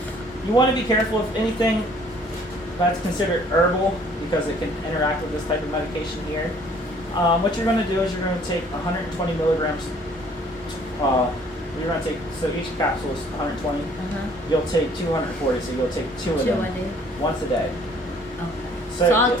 You want to be careful if anything that's considered herbal because it can interact with this type of medication here. What you're going to do is you're going to take 120 milligrams. You're going to take, so each capsule is 120. You'll take 240, so you'll take 2 of 2 them a day? once a day. Okay. So So I'll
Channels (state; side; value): normal; both; correlation 0.58